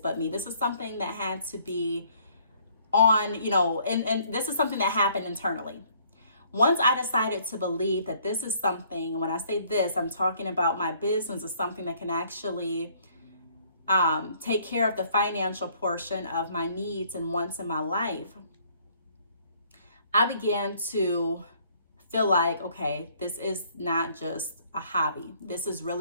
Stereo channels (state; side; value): inverted; both; correlation -0.61